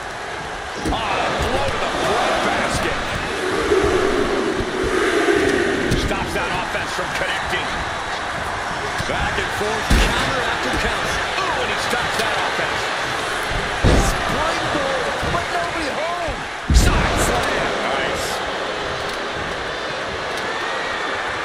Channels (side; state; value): both; identical; correlation 1.00